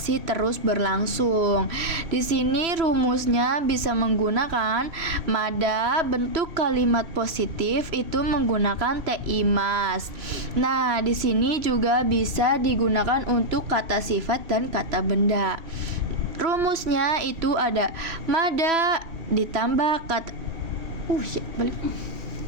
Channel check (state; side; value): late; left; 3.0 ms